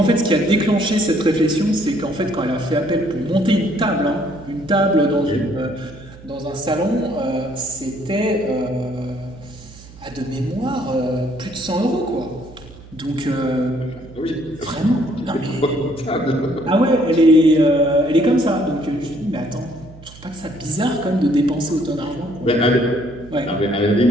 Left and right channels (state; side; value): noise; right; hum, 19 dB below the sound